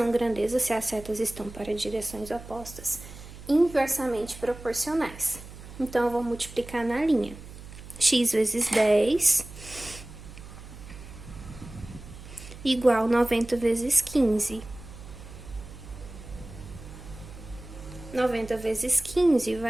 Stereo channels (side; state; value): right; noise; hum, 15 dB below the sound